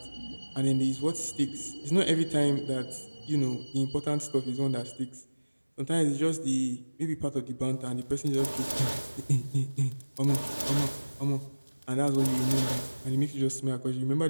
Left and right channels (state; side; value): inverted; both; correlation -1.00